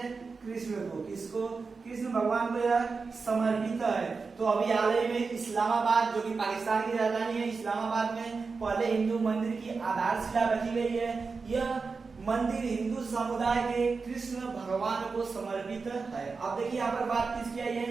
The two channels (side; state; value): left; quieter; 4.6 dB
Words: कृष्ण को। किसको? कृष्ण भगवान को यह समर्पित है। तो अभी हाल ही में इस्लामाबाद, जो कि पाकिस्तान की राजधानी है, इस्लामाबाद में पहले हिंदू मंदिर की आधारशिला रखी गई है। यह मंदिर हिंदू समुदाय के कृष्ण भगवान को समर्पित है। अब देखिए, यहाँ पर बात किसकी आई है?